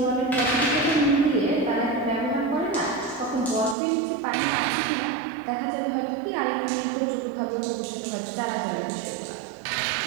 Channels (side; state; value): left; drops out; at 3.8 s